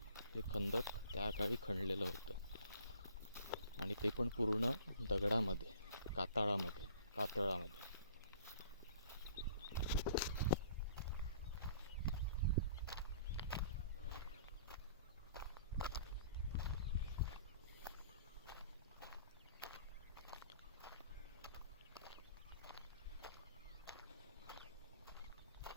हे खंदक त्या काळी खणलेलं होतं, आणि ते पण पूर्ण दगडामध्ये, कातळामध्ये.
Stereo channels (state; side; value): inverted; both; correlation -0.53